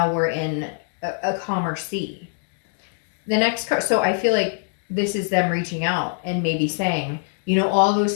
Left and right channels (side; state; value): right; silent; 63 dB below the other